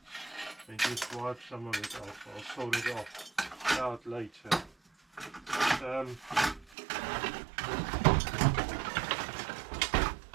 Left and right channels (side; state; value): left; drops out; at 6.8 s